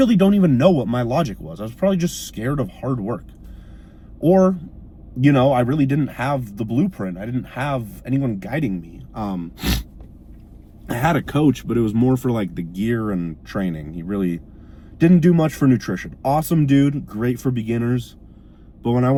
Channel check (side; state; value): both; identical; correlation 1.00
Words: don't even know what my logic was. I was probably just scared of hard work. Or, I really didn't have the blueprint. I didn't have anyone guiding me. I had a coach, but it was more for like the gear and training. He really didn't do much for nutrition. Awesome dude, great for beginners. But when I